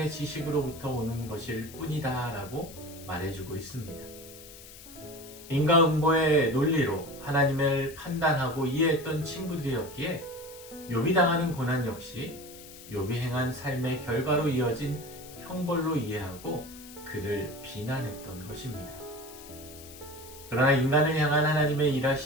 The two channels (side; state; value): left; noise; hiss, 17 dB below the sound